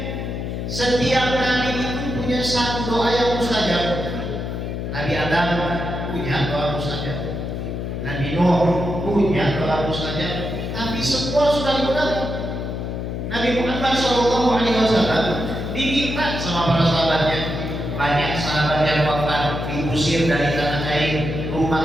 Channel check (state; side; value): noise; left; hum, 4 dB below the sound